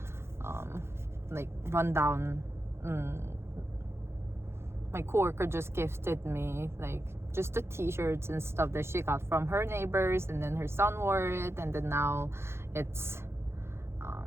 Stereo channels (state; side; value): late; left; 0.12 ms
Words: like rundown. My coworker just gifted me like just the t-shirts and stuff that she got from her neighbors, and then her son wore it, and then now it's